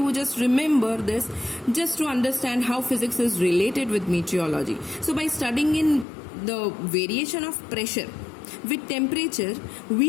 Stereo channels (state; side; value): drops out; right; at 6.1 s